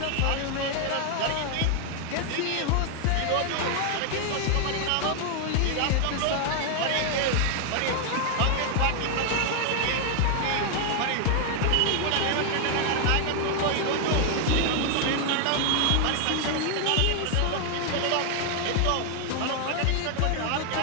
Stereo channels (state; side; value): different; both; correlation 0.00